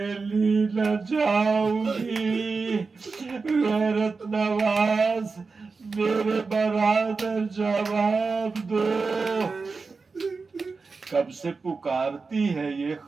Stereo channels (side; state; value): left; quieter; 4.4 dB